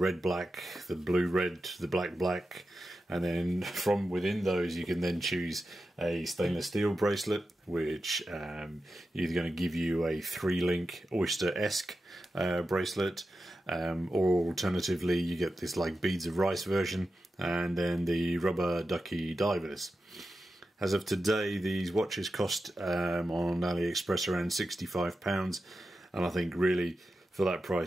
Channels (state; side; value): normal; both; correlation 0.91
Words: black, the blue red, the black black, and then from within those you can then choose a stainless steel bracelet, which either going to give you a 3-link oyster-esque bracelet, or alternatively you get this like beads of rice version, and then the rubber ducky divers. As of today, these watches cost on AliExpress around £65, and I think really for that